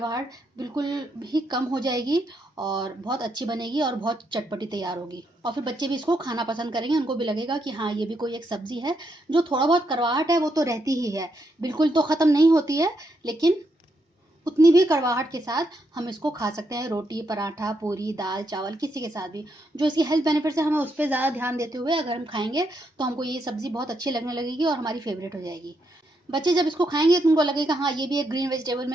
बिल्कुल भी कम हो जाएगी और बहुत अच्छी बनेगी और बहुत चटपटी तैयार होगी। और फिर बच्चे भी इसको खाना पसंद करेंगे, उनको भी लगेगा कि हाँ, ये भी कोई एक सब्ज़ी है। जो थोड़ा बहुत कड़वाहट है वो तो रहती ही है, बिल्कुल तो ख़त्म नहीं होती है, लेकिन उतनी भी कड़वाहट के साथ हम इसको खा सकते हैं रोटी, पराठा, पूरी, दाल, चावल किसी के साथ भी। जो इसकी हेल्थ बेनिफिट्स है हमें उस पर ज़्यादा ध्यान देते हुए अगर हम खाएंगे तो हमको ये सब्ज़ी बहुत अच्छी लगने लगेगी और हमारी फेवरेट हो जाएगी। बच्चे जब इसको खाएंगे तो उनको लगेगा हाँ, ये भी एक ग्रीन वेजिटेबल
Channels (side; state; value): both; normal; correlation 0.79